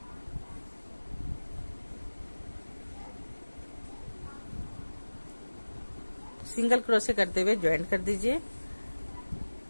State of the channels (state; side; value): inverted; both; correlation -1.00